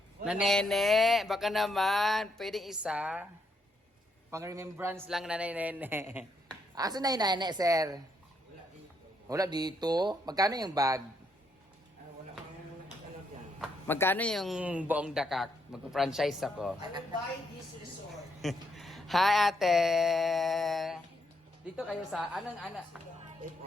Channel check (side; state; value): both; normal; correlation 0.76